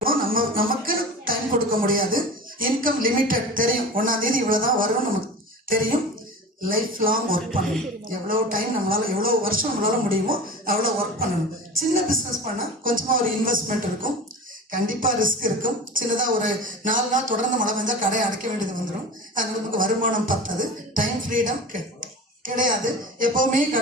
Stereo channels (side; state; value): both; normal; correlation 0.33